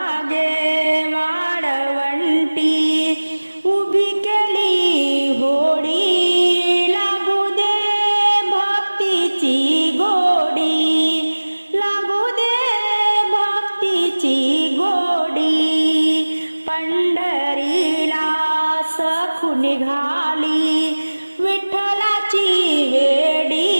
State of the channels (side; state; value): both; inverted; correlation -1.00